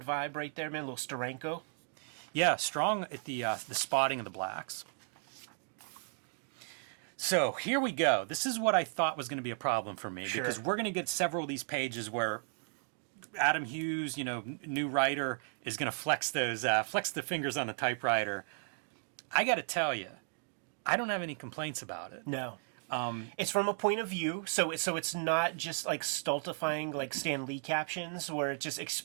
vibe right there, man. A little Steranko. Yeah, strong at the spotting of the blacks. So here we go. This is what I thought was going to be a problem for me, because we're going to get several of these pages where Adam Hughes, you know, new writer, is going to flex the fingers on the typewriter. I got to tell you, I don't have any complaints about it. No. It's from a point of view, so it's not just like stultifying like Stan Lee captions where it's just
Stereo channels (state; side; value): silent; left; 54 dB below the other